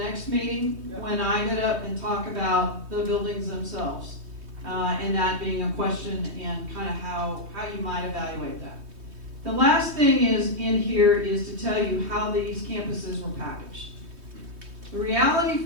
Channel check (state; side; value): late; left; 3.2 ms